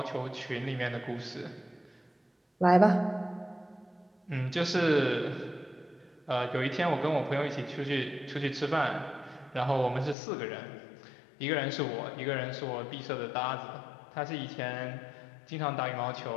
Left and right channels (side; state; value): right; drops out; at 10.2 s